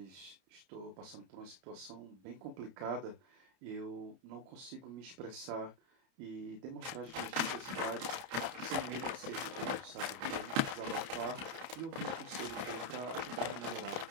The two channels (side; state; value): left; late; 30 ms